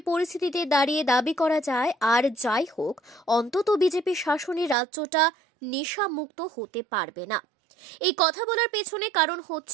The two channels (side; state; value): left; drops out; at 4.8 s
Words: পরিস্থিতিতে দাঁড়িয়ে দাবি করা যায়, আর যাই হোক, অন্তত বিজেপি শাসনে রাজ্যটা নেশামুক্ত হতে পারবে না। এই কথা বলার পেছনে কারণ